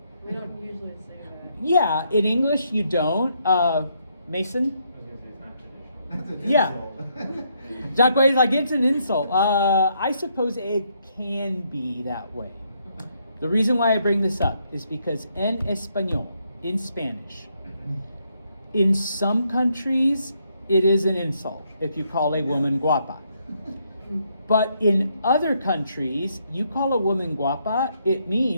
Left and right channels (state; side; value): inverted; both; correlation -0.74